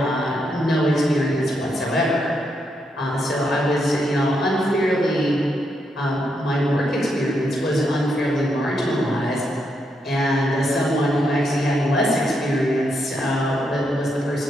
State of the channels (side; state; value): both; normal; correlation 0.80